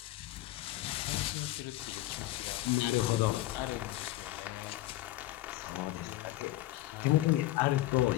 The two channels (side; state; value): right; quieter; 16.6 dB